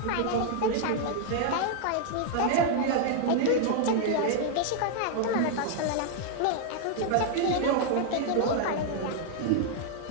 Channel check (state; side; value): different; both; correlation 0.00